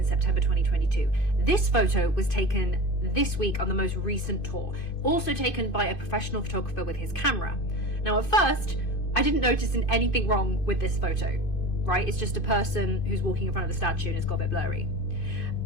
September 2022. This photo was taken this week on the most recent tour, also taken by a professional photographer with his camera. Now at first, I didn't notice anything wrong with this photo, right? It's just a person who's walking in front of the statue and it's got a bit blurry.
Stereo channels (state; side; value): late; right; 2.5 ms